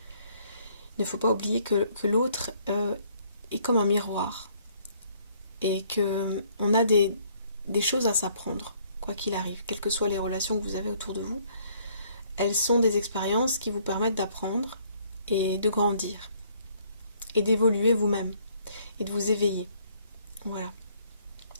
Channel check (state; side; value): inverted; both; correlation -0.65